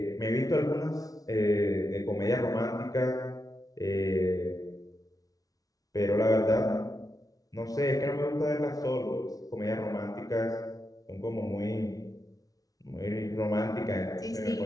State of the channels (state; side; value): late; right; 0.18 ms